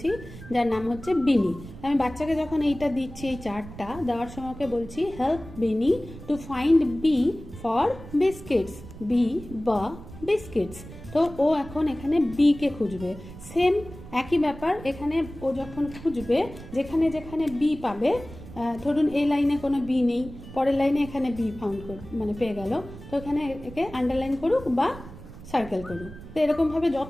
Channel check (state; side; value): noise; right; rumble, 15 dB below the sound